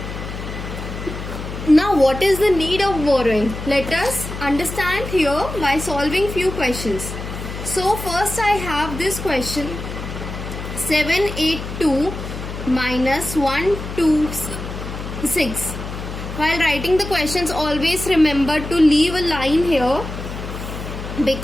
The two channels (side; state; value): left; noise; hum, 8 dB below the sound